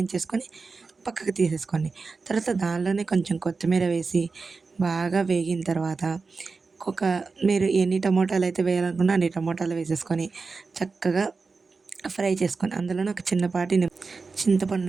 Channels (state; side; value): quieter; left; 4.4 dB